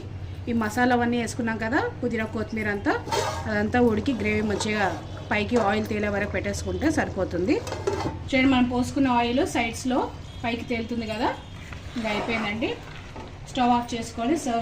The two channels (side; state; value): both; identical; correlation 1.00